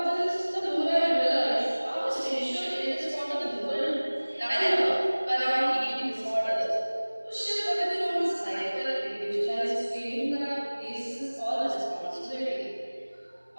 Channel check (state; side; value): inverted; both; correlation -1.00